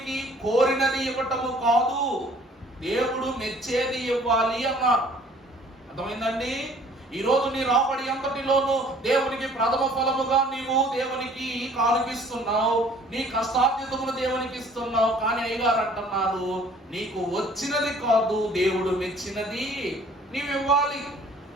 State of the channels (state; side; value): normal; both; correlation 0.55